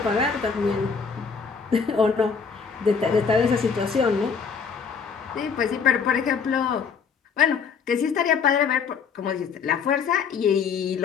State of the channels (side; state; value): right; quieter; 6.0 dB